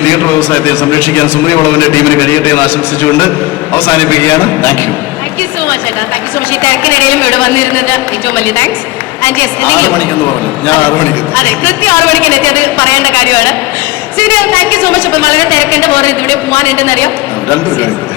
തിയേറ്റർ വ്യവസായത്തെയും സംരക്ഷിക്കാൻ സുമതി വളവിന്റെ ടീമിന് കഴിയട്ടെ എന്ന് ആശംസിച്ചുകൊണ്ട് അവസാനിപ്പിക്കുകയാണ്. Thank you. Thank you so much ഏട്ടാ. Thank you so much. ഈ തിരക്കിനിടയിലും ഇവിടെ വന്നിരുന്നത് ഏറ്റവും വലിയ താങ്ക്സ്. ആൻഡ് യെസ്, 6 മണിക്കെന്ന് പറഞ്ഞു, ഞാൻ 6 മണിക്ക്. അതെ, കൃത്യം 6 മണിക്ക് എത്തി, അത് പറയേണ്ട കാര്യമാണ്. ശരി, താങ്ക് യു സോ മച്ച്. അപ്പം വളരെ തിരക്കുണ്ട്, വേറെ ഇതിവിടെ പോകാനുണ്ടെന്നറിയാം.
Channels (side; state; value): right; quieter; 19.4 dB